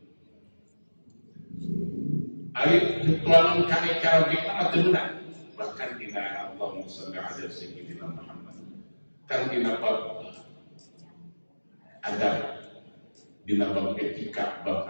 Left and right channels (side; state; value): both; inverted; correlation -1.00